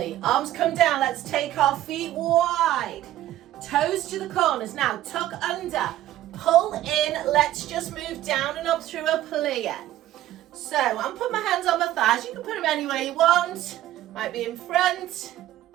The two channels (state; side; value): quieter; left; 13.7 dB